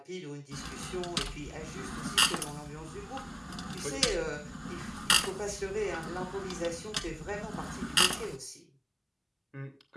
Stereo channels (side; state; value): both; identical; correlation 1.00